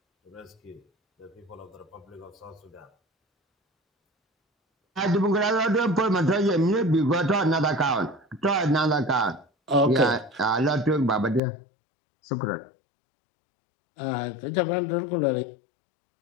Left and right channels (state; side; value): drops out; right; at 11.4 s